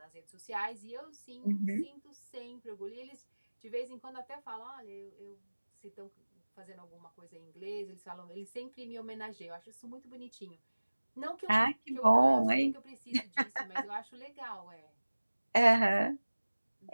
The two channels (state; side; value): inverted; both; correlation -1.00